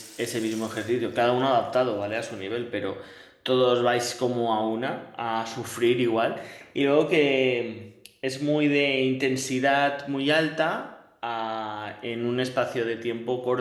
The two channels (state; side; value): identical; both; correlation 1.00